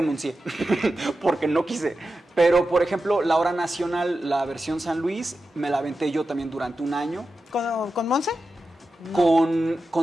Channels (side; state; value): both; normal; correlation 0.91